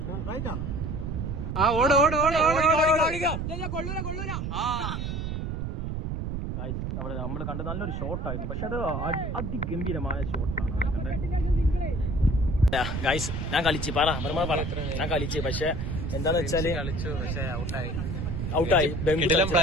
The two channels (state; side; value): noise; right; rumble, 3 dB below the sound